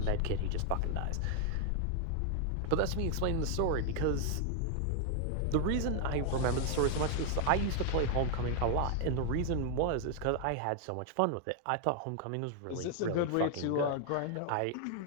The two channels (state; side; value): different; both; correlation 0.00